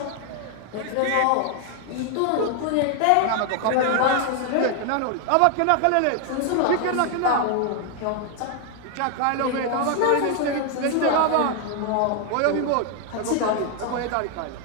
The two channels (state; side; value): different; both; correlation 0.00